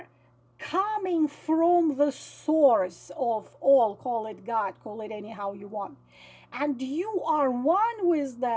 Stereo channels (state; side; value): identical; both; correlation 1.00